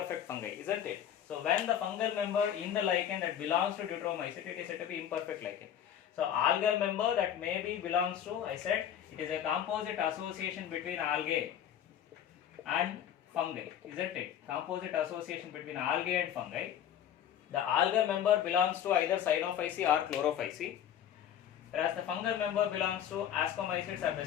fungi, isn't it? So when the fungal member in the lichen that belongs to deuteromycete, it is said to be imperfect lichen. So algal member that maybe belongs to, I said, it is a composite association between algae and fungi, isn't it? Composite association between algae and fungi. The algal member belongs to either Cyanophyceae or Chlorophyceae, whereas the fungal member belongs to ascomycetes or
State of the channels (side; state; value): right; quieter; 9.9 dB